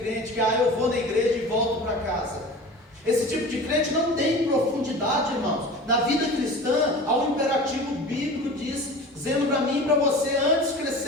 crente que eu vou na igreja e volto para casa. Esse tipo de crente não tem profundidade, irmãos. Na vida cristã há um imperativo bíblico dizendo para mim e para você, antes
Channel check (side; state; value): both; normal; correlation 0.36